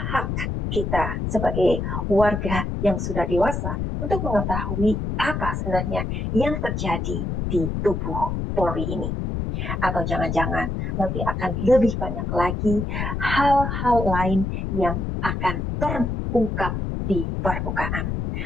kita sebagai warga yang sudah dewasa untuk mengetahui apa sebenarnya yang terjadi di tubuh Polri ini? Atau jangan-jangan nanti akan lebih banyak lagi hal-hal lain yang akan terungkap di permukaan.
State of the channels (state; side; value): noise; left; rumble, 2 dB below the sound